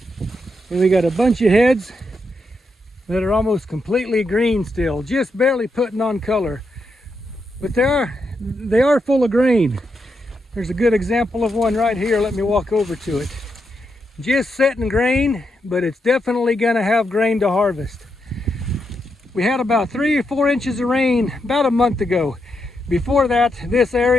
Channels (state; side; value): normal; both; correlation 0.83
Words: we got a bunch of heads that are almost completely green still, just barely putting on color. But they are full of grain. There's a good example of one right here. Let me walk over to it. Just setting grain, but it's definitely gonna have grain to harvest. We had about 3 or 4 inches of rain about a month ago. Before that, this